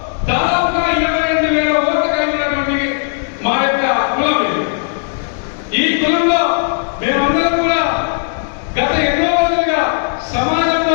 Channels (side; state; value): right; silent; digital silence